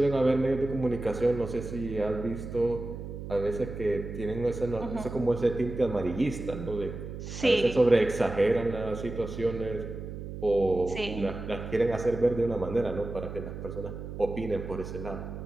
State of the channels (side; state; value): right; noise; hum, 9 dB below the sound